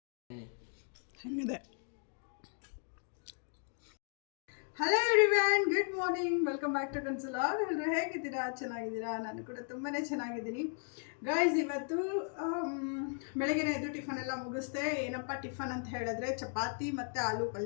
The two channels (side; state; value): right; silent; 54 dB below the other